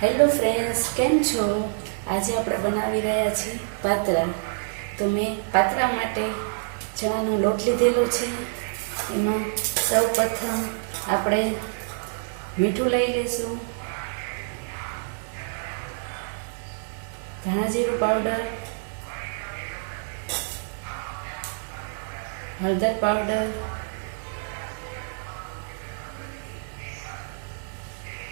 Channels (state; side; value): silent; left; 60 dB below the other